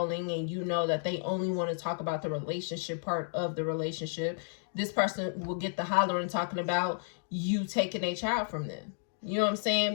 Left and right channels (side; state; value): right; silent; digital silence